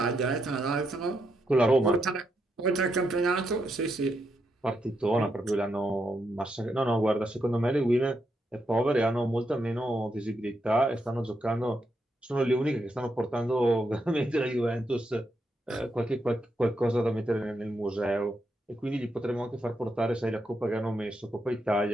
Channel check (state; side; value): normal; both; correlation 0.81